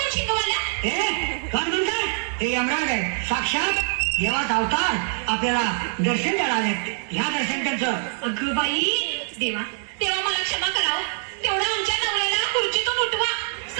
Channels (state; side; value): silent; left; 63 dB below the other